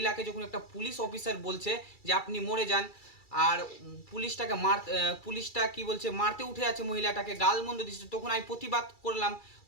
যখন একটা পুলিশ অফিসার বলছে যে আপনি মরে যান, আর পুলিশটা কি বলছে, মারতে উঠে আছে মহিলাটাকে, গালমন্দ দিচ্ছে, তখন আমি প্রতিবাদ করলাম।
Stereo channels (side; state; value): right; late; 2.3 ms